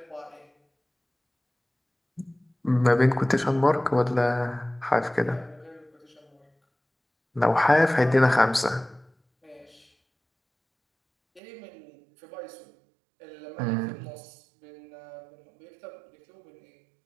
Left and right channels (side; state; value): left; drops out; at 11.4 s